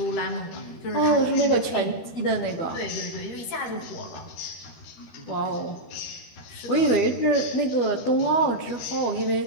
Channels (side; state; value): right; late; 12 ms